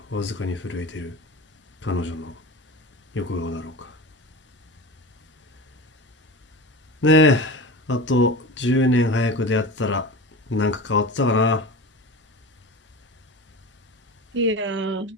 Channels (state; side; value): normal; both; correlation 0.30